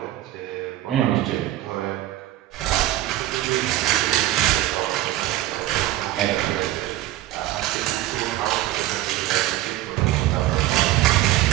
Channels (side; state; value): left; quieter; 14.9 dB